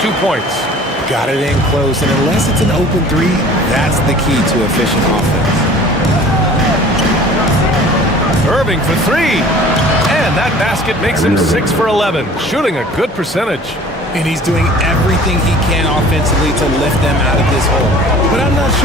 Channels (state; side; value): normal; both; correlation 0.47